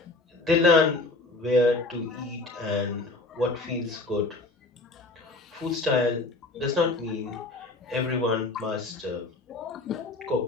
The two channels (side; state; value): right; quieter; 3.1 dB